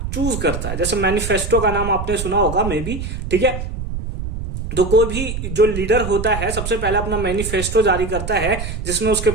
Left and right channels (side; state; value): right; noise; rumble, 6 dB below the sound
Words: चूज करता है। जैसे मैनिफेस्टो का नाम आपने सुना होगा मे बी, ठीक है। तो कोई भी जो लीडर होता है सबसे पहले अपना मैनिफेस्टो जारी करता है, जिसमें उसके